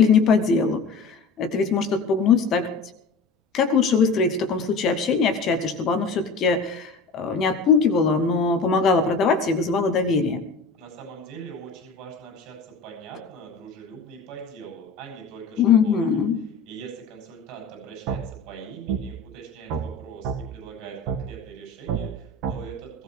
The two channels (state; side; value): quieter; right; 4.2 dB